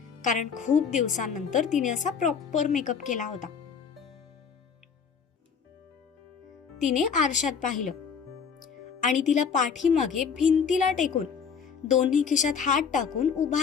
कारण खूप दिवसांनंतर तिने असा प्रॉपर मेकअप केला होता. तिने आरशात पाहिलं आणि तिला पाठीमागे भिंतीला टेकून दोन्ही खिशात हात टाकून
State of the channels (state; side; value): quieter; right; 6.3 dB